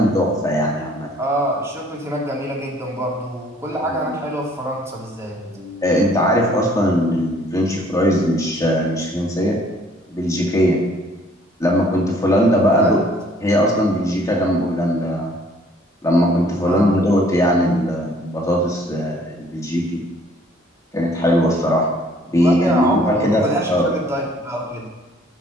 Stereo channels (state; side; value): normal; both; correlation 0.59